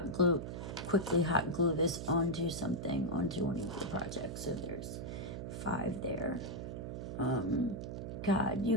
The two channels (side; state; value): right; noise; hum, 6 dB below the sound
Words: glue this onto something, onto one of your projects. So there's 5 there. God,